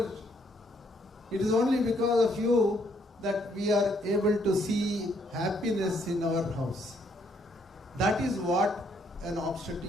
it is only because of you that we are able to see happiness in our house. That is what an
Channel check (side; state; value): both; normal; correlation 0.70